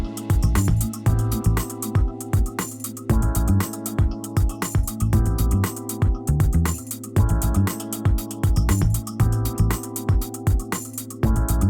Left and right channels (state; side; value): identical; both; correlation 1.00